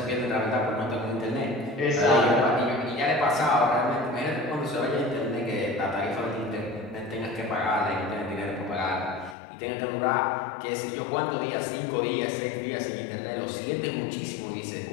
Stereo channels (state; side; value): drops out; right; at 9.3 s